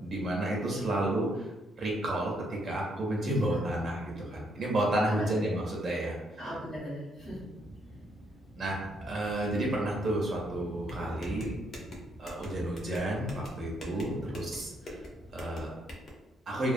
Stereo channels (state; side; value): normal; both; correlation 0.73